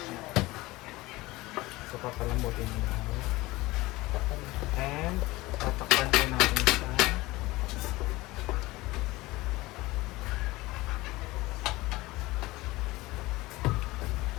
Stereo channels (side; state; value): right; quieter; 20.1 dB